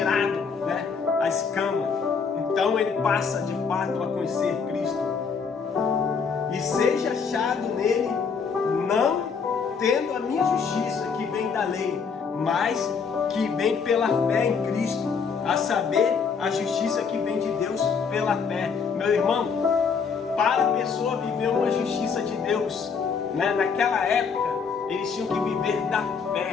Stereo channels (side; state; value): right; quieter; 5.8 dB